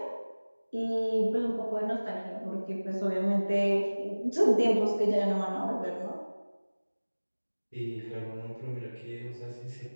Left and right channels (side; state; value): both; inverted; correlation -1.00